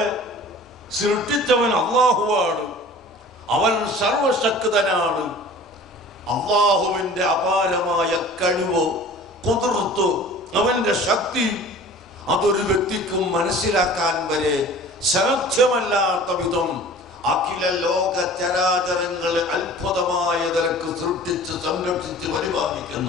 സൃഷ്ടിച്ചവൻ അല്ലാഹുവാണ്. അവൻ സർവശക്തനാണ്. അല്ലാഹുവിന്റെ അപാരമായ കഴിവ്, ഖുദ്റത്ത്, അവന്റെ ശക്തി അതൊരു വ്യക്തിക്കും മനസ്സിലാക്കാൻ വരെ സാധ്യമല്ലാത്ത വിധം അഖില ലോക ചരാചരങ്ങളെ അത്ഭുതമായ നിലക്ക് സൃഷ്ടിച്ച് സംരക്ഷിച്ച്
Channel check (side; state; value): both; normal; correlation 0.44